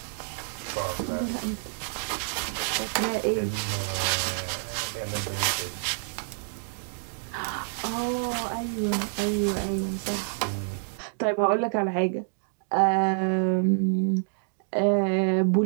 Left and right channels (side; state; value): left; silent; digital silence